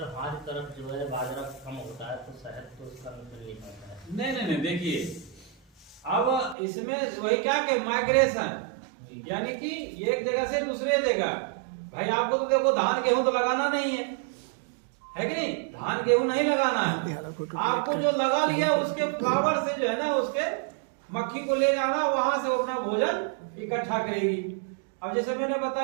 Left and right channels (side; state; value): left; drops out; at 6.6 s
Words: हमारी तरफ जो है बाजरा कम होता है, तो शहद तो उसका मतलब नहीं पाता है। नहीं, देखिए अब इसमें वही क्या कि माइग्रेशन, यानी कि एक जगह से दूसरे जगह। भाई आपको तो देखो धान गेहूं तो लगाना नहीं है कि नहीं, धान गेहूं नहीं लगाना है, आपको जो लगा लिया उसके फ्लावर से जो है ना, उसके मक्खी को ले जाना, वहां से अपना भोजन इकट्ठा करेगी। अब जैसे मैंने